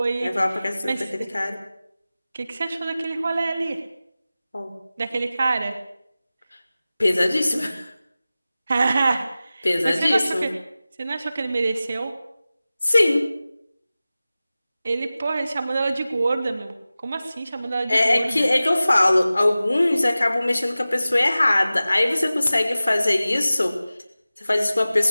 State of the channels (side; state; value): both; inverted; correlation -0.96